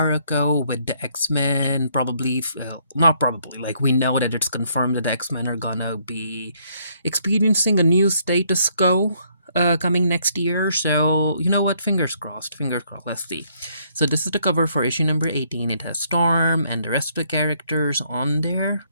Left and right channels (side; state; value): both; inverted; correlation -0.69